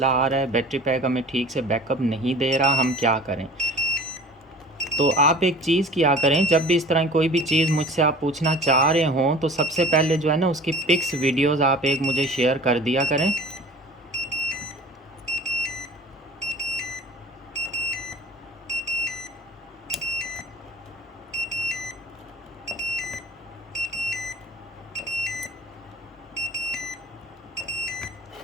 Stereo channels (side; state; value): both; normal; correlation 0.43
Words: आ रहा है, बैटरी पैक हमें ठीक से बैकअप नहीं दे रहा, हम क्या करें। तो आप एक चीज़ किया करें, जब भी इस तरह कोई भी चीज़ मुझसे आप पूछना चाह रहे हों, तो सबसे पहले जो है ना उसकी पिक्स वीडियोज़ आप एक मुझे शेयर कर दिया करें।